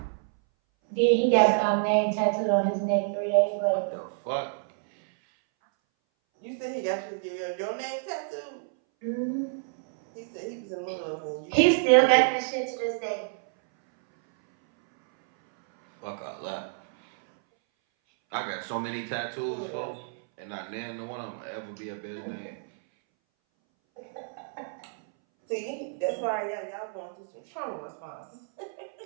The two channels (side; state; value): left; silent; 59 dB below the other